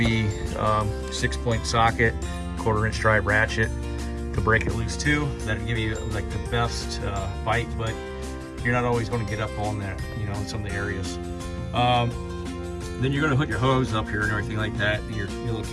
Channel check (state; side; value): identical; both; correlation 1.00